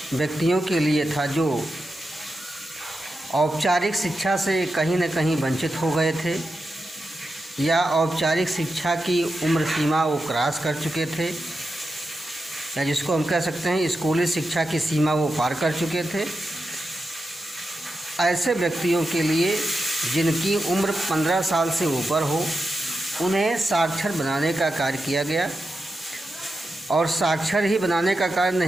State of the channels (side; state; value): both; normal; correlation 0.89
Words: व्यक्तियों के लिए था जो औपचारिक शिक्षा से कहीं न कहीं वंचित हो गए थे या औपचारिक शिक्षा की उम्र सीमा वो क्रॉस कर चुके थे, या जिसको हम कह सकते हैं स्कूली शिक्षा की सीमा वो पार कर चुके थे। ऐसे व्यक्तियों के लिए जिनकी उम्र 15 साल से ऊपर हो, उन्हें साक्षर बनाने का कार्य किया गया। और साक्षर ही बनाने का कार्य